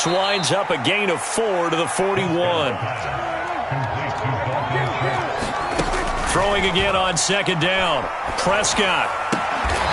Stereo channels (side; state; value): both; identical; correlation 1.00